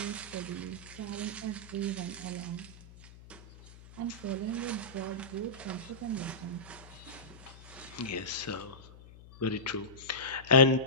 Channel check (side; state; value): left; noise; hum, 19 dB below the sound